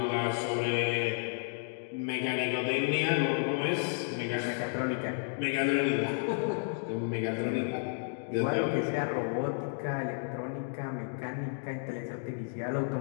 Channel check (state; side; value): silent; right; digital silence